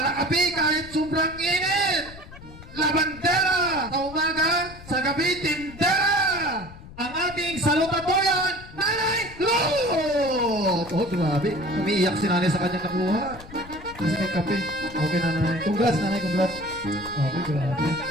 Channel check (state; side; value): noise; left; rumble, 17 dB below the sound